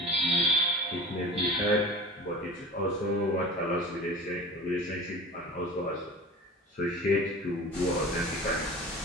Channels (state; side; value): normal; both; correlation 0.36